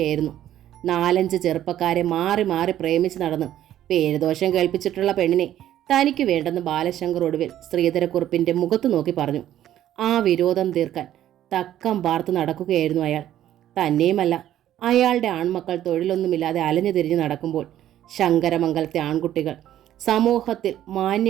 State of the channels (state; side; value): quieter; left; 12.1 dB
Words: 4-5 ചെറുപ്പക്കാരെ മാറി മാറി പ്രേമിച്ച് നടന്ന് പേരുദോഷം കേൾപ്പിച്ചിട്ടുള്ള പെണ്ണിനെ തനിക്ക് വേണ്ടെന്ന് ബാലശങ്കർ ഒടുവിൽ ശ്രീധരക്കുറുപ്പിൻ്റെ മുഖത്ത് നോക്കി പറഞ്ഞു. ആ വിരോധം തീർക്കാൻ തക്കം പാർത്ത് നടക്കുകയായിരുന്നു അയാൾ. തന്നെയുമല്ല, അയാളുടെ ആൺമക്കൾ തൊഴിലൊന്നുമില്ലാതെ അലഞ്ഞു തിരിഞ്ഞ് നടക്കുമ്പോൾ ശങ്കരമംഗലത്തെ ആൺകുട്ടികൾ സമൂഹത്തിൽ